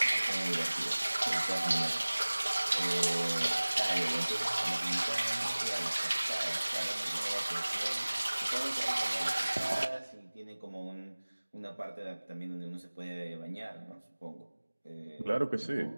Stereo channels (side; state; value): both; inverted; correlation -1.00